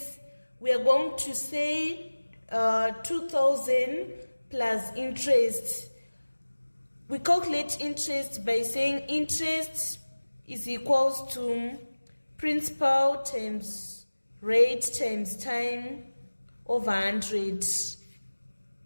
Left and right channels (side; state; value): both; inverted; correlation -1.00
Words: we are going to say 2,000 plus interest. We calculate interest by saying interest is equals to principal times rate times time over 100.